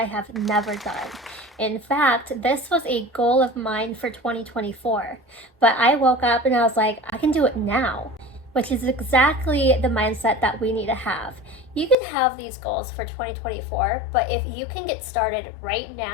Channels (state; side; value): drops out; right; at 12.0 s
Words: have never done. In fact, this was a goal of mine for 2024, but I woke up and I was like, I can do it now, which is exactly the mindset that we need to have. You can have these goals for 2024, but if you can get started right